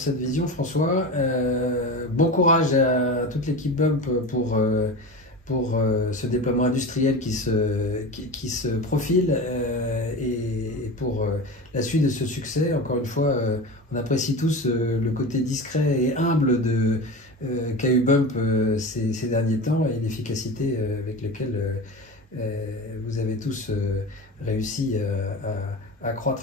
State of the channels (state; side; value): normal; both; correlation 0.28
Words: vision, François. Bon courage à toute l'équipe Bump pour ce déploiement industriel qui se profile et pour la suite de ce succès. Encore une fois, on apprécie tous le côté discret et humble qu'a eu Bump ces derniers temps et l'efficacité avec laquelle vous avez tous réussi à